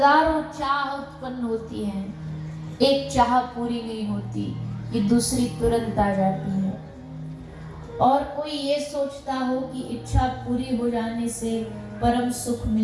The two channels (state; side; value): identical; both; correlation 1.00